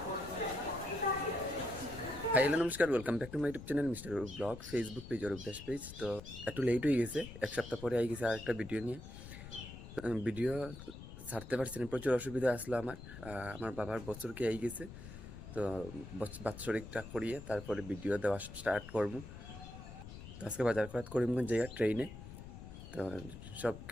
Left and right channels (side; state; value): left; noise; rumble, 12 dB below the sound